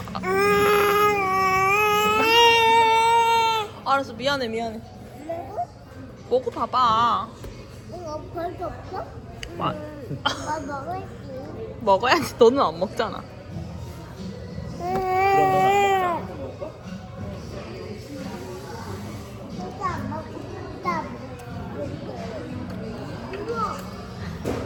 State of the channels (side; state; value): both; identical; correlation 1.00